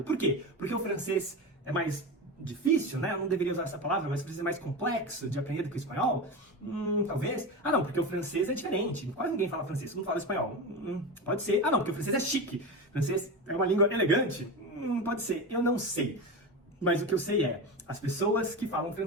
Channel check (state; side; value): normal; both; correlation 0.23